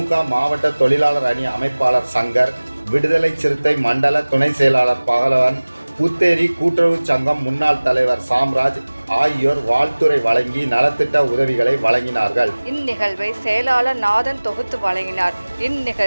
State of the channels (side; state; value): both; inverted; correlation -1.00